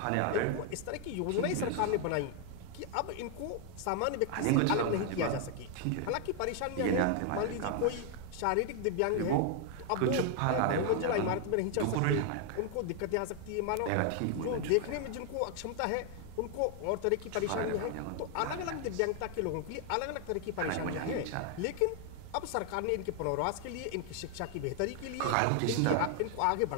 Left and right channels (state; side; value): different; both; correlation 0.00